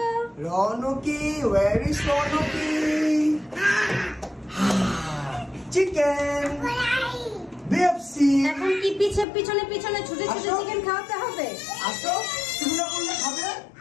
Ronki, where is Ronki? Chicken BFC. এখন কি পিছনে পিছনে ছুটে ছুটে চিকেন খাওয়াতে হবে? আসো, তুমি না বললে খাবে?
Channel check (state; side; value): drops out; right; at 9.2 s